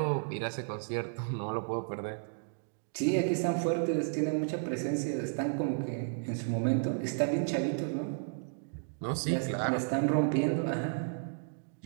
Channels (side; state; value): left; silent; digital silence